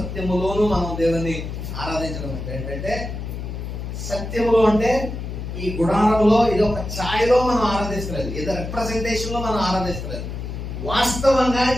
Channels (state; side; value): noise; left; hum, 6 dB below the sound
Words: మనం దేవుణ్ణి ఆరాధించడం అంటే ఏంటంటే సత్యములో అంటే ఈ గుడారంలో ఇది ఒక ఛాయలో మనం ఆరాధిస్తలేదు, ఏదో రిప్రజెంటేషన్ లో మనం ఆరాధిస్తలేదు, వాస్తవంగా